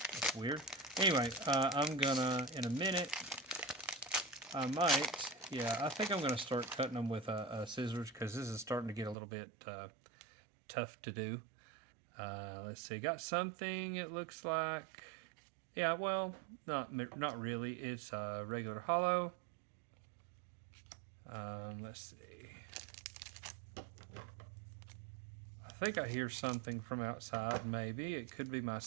weird. Anyway, I'm gonna, in a minute, I think I'm gonna start cutting them with scissors, because this is starting to get a little bit tough to do. Let's see, got something, it looks like. Yeah, well, not really. It's a regular holo. Let's see. I think I hear something from outside, maybe. It could be my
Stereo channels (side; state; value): left; drops out; at 9.2 s